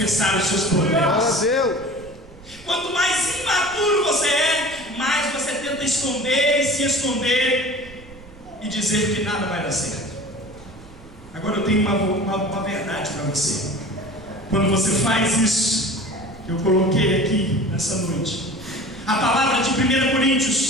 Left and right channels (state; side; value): noise; right; rumble, 21 dB below the sound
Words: os seus problemas. Quanto mais imaturo você é, mais você tenta esconder e se esconder e dizer que nada vai dar certo. Agora eu tenho uma verdade para você. Quando você faz isso, que eu coloquei aqui nessa noite, a palavra de 1